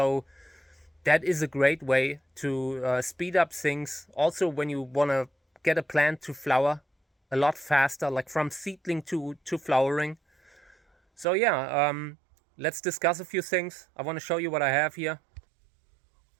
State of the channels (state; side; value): drops out; left; at 11.2 s